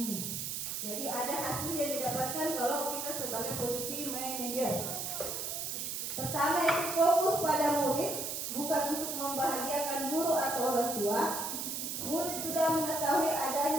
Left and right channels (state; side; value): noise; right; hiss, 3 dB below the sound